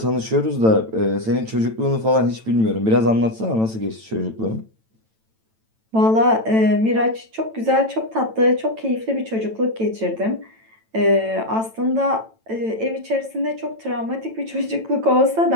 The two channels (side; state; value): left; late; 9.0 ms